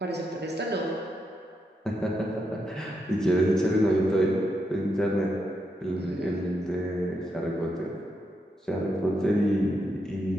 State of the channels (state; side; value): normal; both; correlation 0.82